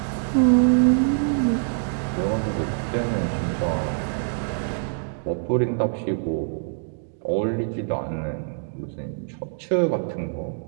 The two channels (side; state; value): left; silent; digital silence